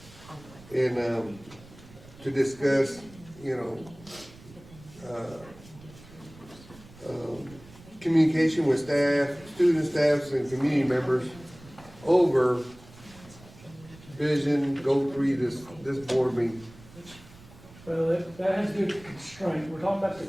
and, to discuss, you know, communication with staff, student staffs, and community members over vision, goal 3, this board meeting. Well, that has to do with constraint, we're talking about the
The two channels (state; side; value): noise; right; rumble, 21 dB below the sound